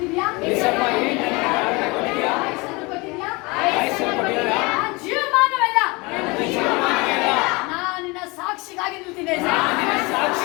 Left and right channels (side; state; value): right; quieter; 25.7 dB